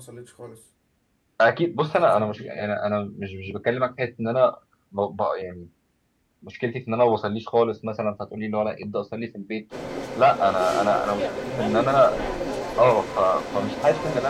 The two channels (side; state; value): both; identical; correlation 1.00